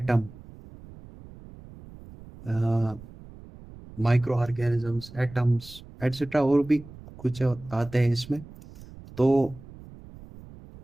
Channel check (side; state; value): right; noise; rumble, 18 dB below the sound